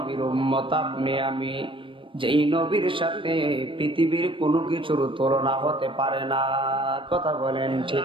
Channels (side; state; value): left; late; 0.25 ms